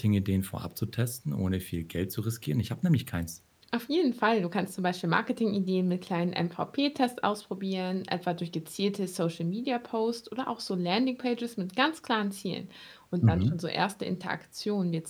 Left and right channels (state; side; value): identical; both; correlation 1.00